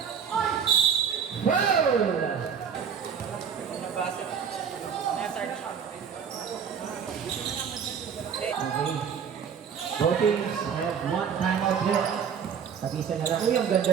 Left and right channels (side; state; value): left; quieter; 7.2 dB